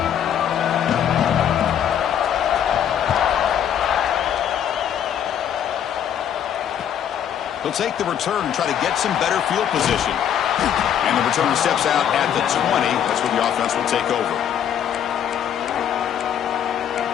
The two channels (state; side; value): quieter; right; 9.4 dB